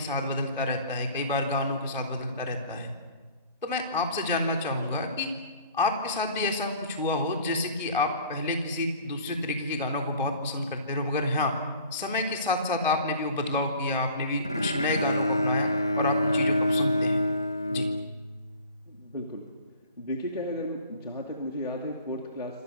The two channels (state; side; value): inverted; both; correlation -0.48